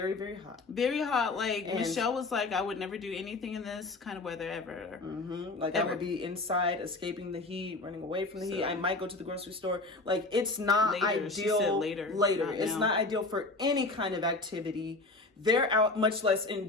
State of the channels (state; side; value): quieter; right; 3.2 dB